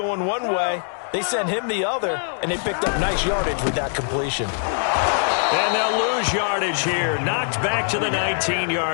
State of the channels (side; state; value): right; silent; digital silence